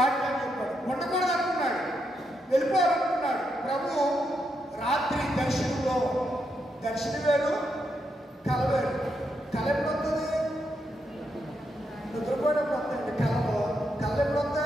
చెప్పాడు. ఉండకూడదు అనుకున్నాడు, వెళ్ళిపోవాలనుకున్నాడు. ప్రభు రాత్రి దర్శనంలో, దర్శనం వేరు కల వేరు. కళ ఎప్పుడు వస్తుంది? నిద్రపోయినప్పుడు వస్తాయండి కళలో. కళ ఎప్పుడు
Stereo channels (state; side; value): normal; both; correlation 0.81